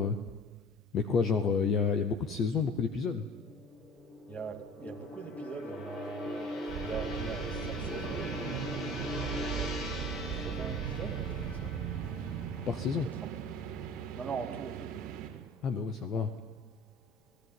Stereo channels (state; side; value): normal; both; correlation 0.43